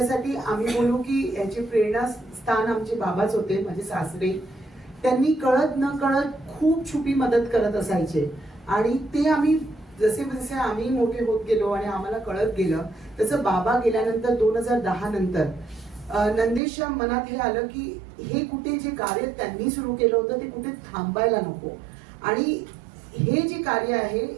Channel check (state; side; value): drops out; left; at 16.6 s